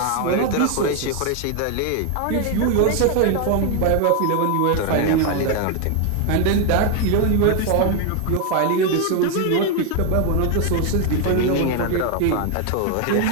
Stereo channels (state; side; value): different; both; correlation 0.01